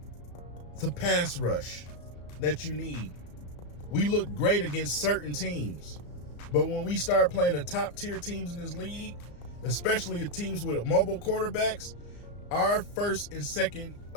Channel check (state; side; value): late; right; 34 ms